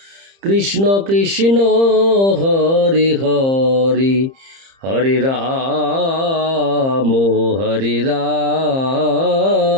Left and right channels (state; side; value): late; left; 30 ms